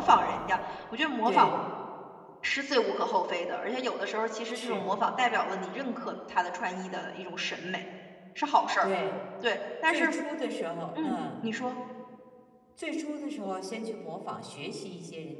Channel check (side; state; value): both; identical; correlation 1.00